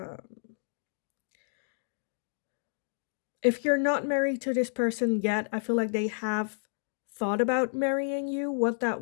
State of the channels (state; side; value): silent; right; digital silence